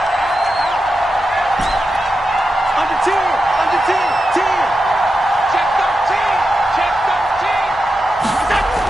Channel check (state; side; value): normal; both; correlation 0.89